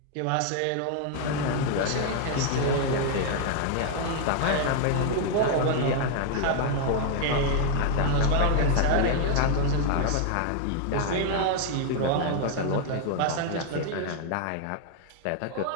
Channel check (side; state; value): both; different; correlation 0.00